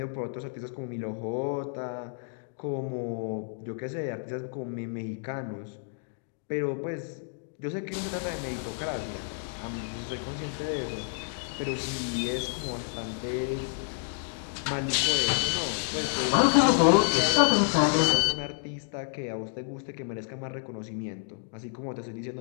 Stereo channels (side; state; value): right; silent; digital silence